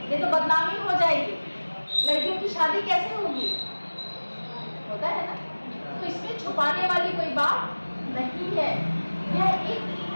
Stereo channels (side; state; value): both; inverted; correlation -1.00